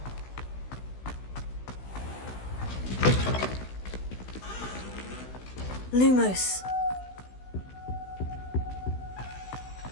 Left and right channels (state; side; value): late; right; 16 ms